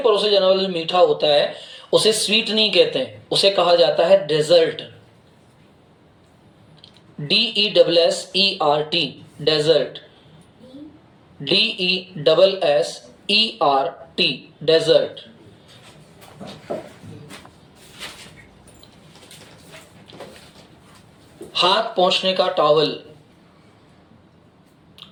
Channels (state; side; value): identical; both; correlation 1.00